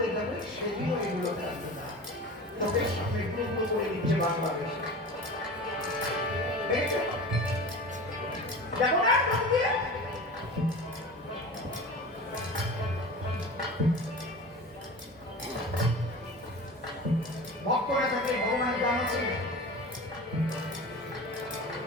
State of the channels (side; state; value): both; normal; correlation 0.34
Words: যাবে, সেদিনও এগুলো থাকবে না। ওদের সামনে গুরু করে দিচ্ছে বাংলাদেশে। দেখেছো? দেখো না চোখ দিয়ে? ভক্তরা থাকে ভগবান জানাচ্ছেন,